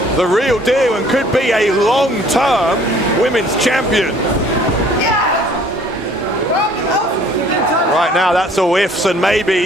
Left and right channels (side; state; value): both; normal; correlation 0.56